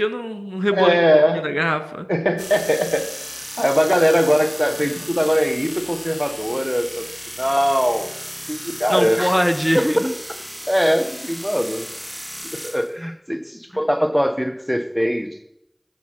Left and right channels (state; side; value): identical; both; correlation 1.00